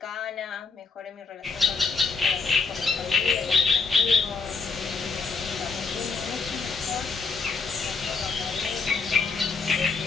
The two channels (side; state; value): right; quieter; 4.5 dB